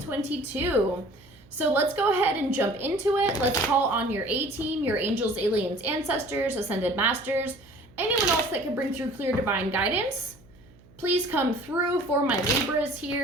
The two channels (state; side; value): noise; right; hum, 26 dB below the sound